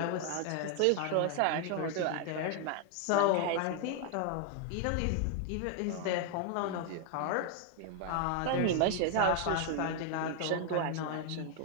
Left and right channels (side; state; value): both; different; correlation 0.00